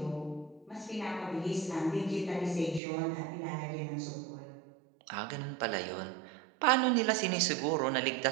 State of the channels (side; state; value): left; drops out; at 2.8 s